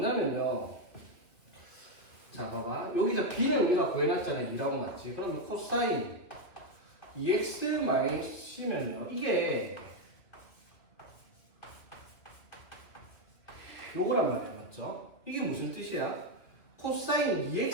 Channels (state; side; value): late; right; 2.4 ms